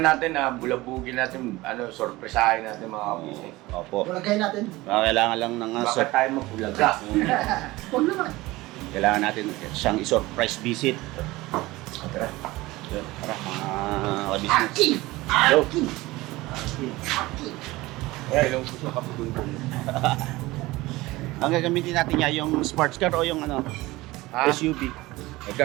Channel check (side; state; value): left; quieter; 19.7 dB